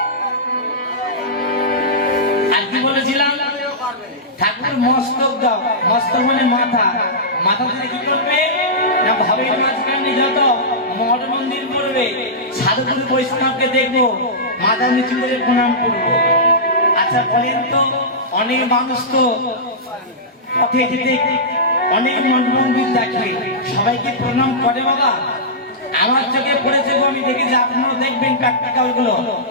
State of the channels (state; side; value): normal; both; correlation -0.15